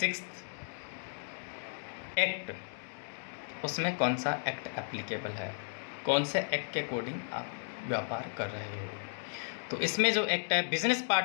एक्ट, उसमें कौन सा एक्ट एप्लीकेबल है, कौन से एक्ट के अकॉर्डिंग आप व्यापार कर रहे हो। तो इसमें जो एक्ट है, business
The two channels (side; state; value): right; silent; digital silence